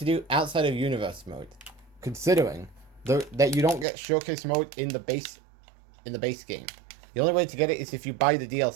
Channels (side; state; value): left; drops out; at 3.9 s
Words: do outside of Universe mode? Considering that you don't get Showcase mode in the base game. The only way to get it is if you buy the